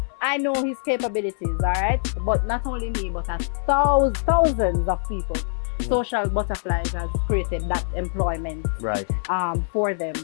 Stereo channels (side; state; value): right; silent; 63 dB below the other